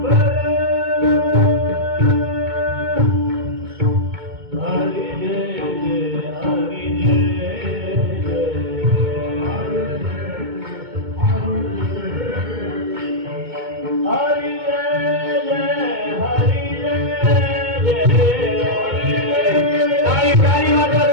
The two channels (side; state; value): left; late; 2.2 ms